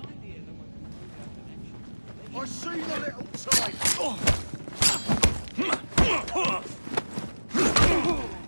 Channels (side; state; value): both; inverted; correlation -1.00